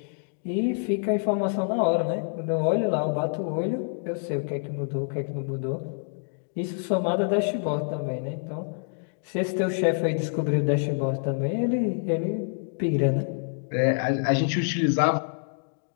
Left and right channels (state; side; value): silent; right; digital silence